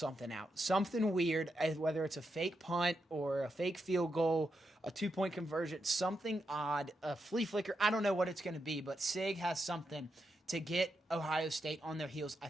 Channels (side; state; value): both; normal; correlation 0.85